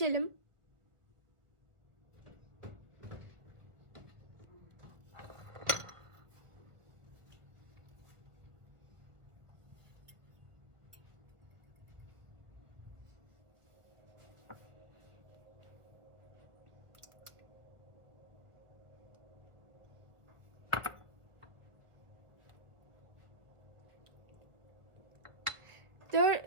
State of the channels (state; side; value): late; left; 1.4 ms